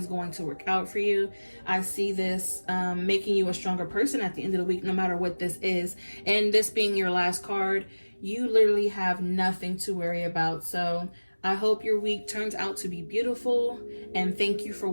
going to work out for you. I see this making you a stronger person at the end of the week, no matter what this is. And this being your last card, you literally have nothing to worry about. So I hope your week turns out to be beautiful. And thank you for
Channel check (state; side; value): inverted; both; correlation -1.00